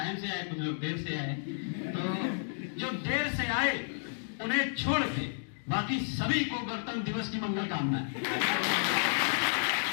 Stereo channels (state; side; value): silent; right; digital silence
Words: से आए, कुछ लोग देर से आए, तो जो देर से आए उन्हें छोड़ के बाकी सभी को गणतंत्र दिवस की मंगल कामनाएं।